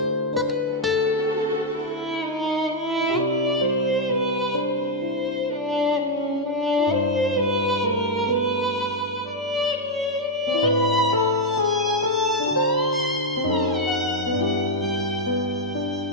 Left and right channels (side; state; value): both; normal; correlation 0.01